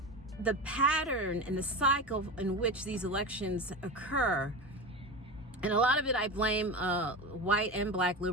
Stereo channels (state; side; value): normal; both; correlation 0.25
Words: the pattern and the cycle in which these elections occur, and a lot of it I blame white and black